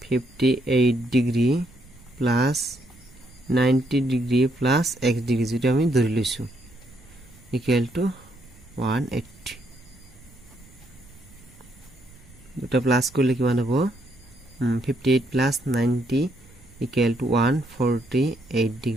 58 degree plus 90 degree plus x degree, যেটা আমি ধৰি লৈছো ইকুয়াল টু 180। দুটা প্লাস করলে কিমান হ'ব 58 plus 90 equal to 148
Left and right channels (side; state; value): right; noise; rumble, 25 dB below the sound